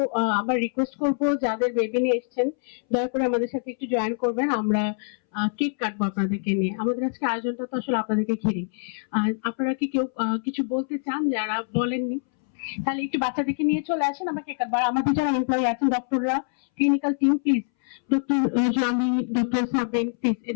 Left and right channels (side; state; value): right; silent; 62 dB below the other